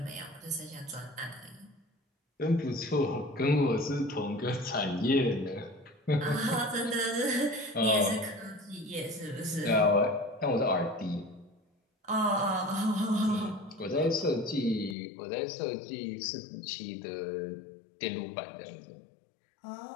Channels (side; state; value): right; drops out; at 15.0 s